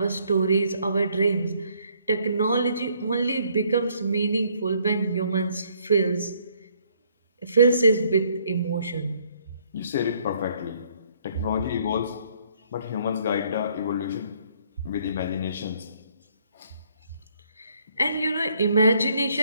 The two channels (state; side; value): inverted; both; correlation -0.66